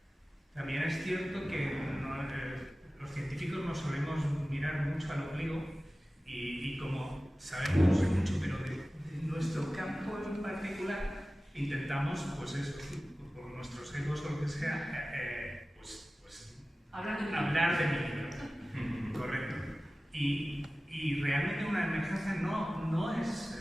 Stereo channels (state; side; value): normal; both; correlation 0.96